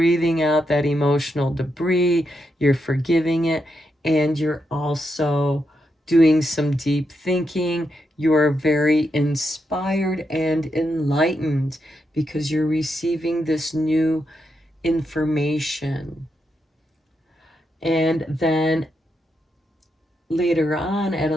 out that emotional debris, you're forgiving it, and you're also doing some deep thinking. You're very inspired and enlightened because you're receiving this new information. And then later on at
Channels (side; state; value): both; normal; correlation 0.83